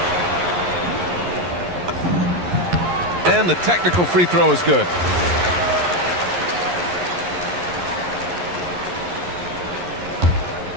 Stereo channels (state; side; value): late; left; 11 ms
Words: And the technical free throw is good.